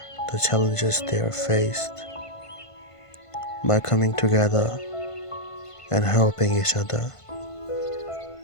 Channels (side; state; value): right; late; 1.5 ms